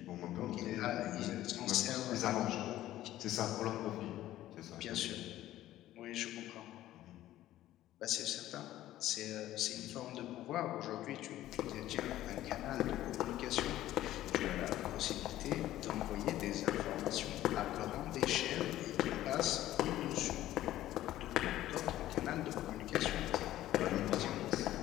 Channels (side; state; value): right; quieter; 14.1 dB